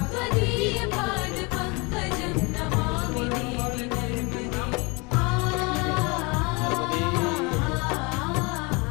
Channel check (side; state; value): right; quieter; 28.4 dB